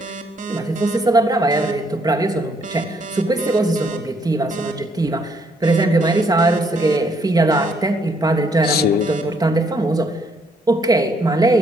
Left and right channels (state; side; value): normal; both; correlation 0.70